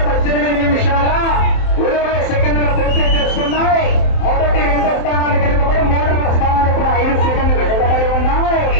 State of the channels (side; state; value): right; late; 27 ms